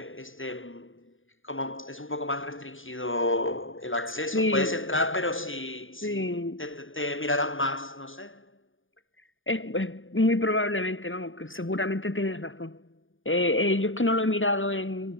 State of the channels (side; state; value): right; late; 0.58 ms